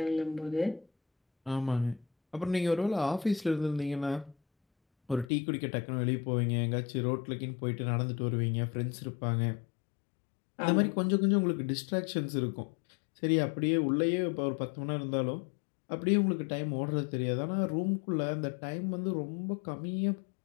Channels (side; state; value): right; drops out; at 5.3 s